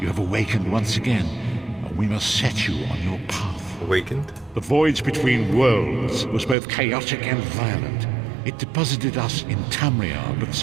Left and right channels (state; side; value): drops out; left; at 6.6 s